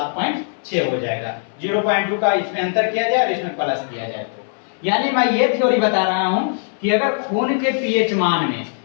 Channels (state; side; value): silent; right; 63 dB below the other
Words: हो जाएगा। 0.2 का इसमें अंतर किया जाए और इसमें प्लस किया जाए तो, यानी मैं ये थ्योरी बता रहा हूं कि अगर खून के पीएच मान में